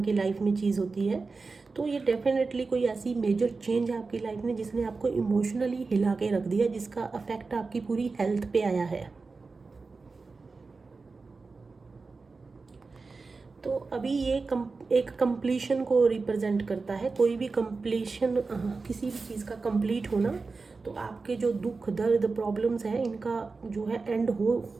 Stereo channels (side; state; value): left; quieter; 4.1 dB